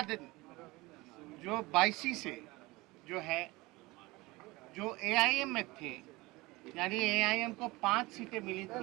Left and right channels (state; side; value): quieter; left; 21.9 dB